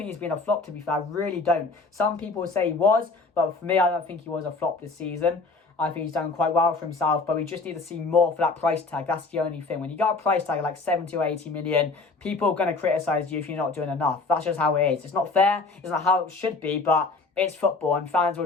he's been a flop, to be fair. I really don't. Some people say he was, but for me, I don't think he was a flop this season. I think he's done quite well for himself, but we just need to see more for that price tag. That's the only thing. When you got a price tag like 70 or 80 million, people are going to criticise you if you're not doing enough. That's just how it is. It's not fair. It's not how it should be, but it's football, and fans will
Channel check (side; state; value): right; quieter; 3.8 dB